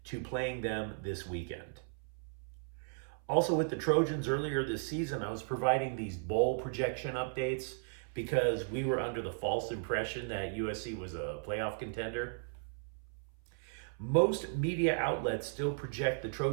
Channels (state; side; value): silent; left; 54 dB below the other